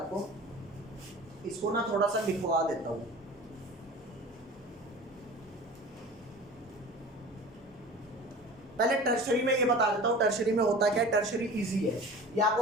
इसको ना थोड़ा सा लिखवा देता हूँ। पहले टर्शरी में ये बता देता हूँ टर्शरी में होता क्या है। टर्शरी इजी है, ये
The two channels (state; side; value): normal; both; correlation 0.38